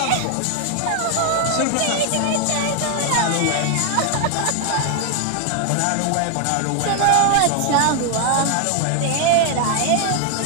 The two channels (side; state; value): both; different; correlation 0.00